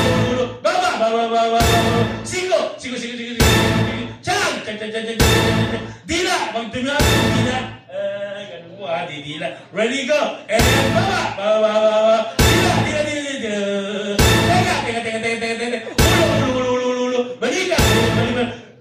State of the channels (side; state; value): both; identical; correlation 1.00